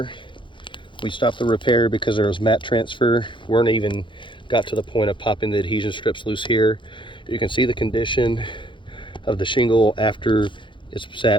We stopped the repair because there was mat transfer. Weren't even got to the point of popping the adhesion strips loose here. You can see the condition of the shingle after it's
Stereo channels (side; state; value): right; late; 0.24 ms